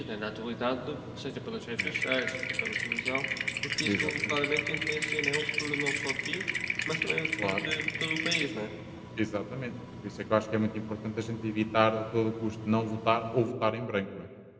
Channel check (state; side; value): identical; both; correlation 1.00